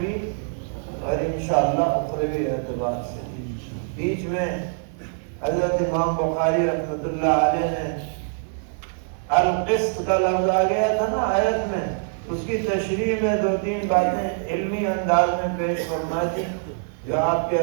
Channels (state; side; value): silent; left; digital silence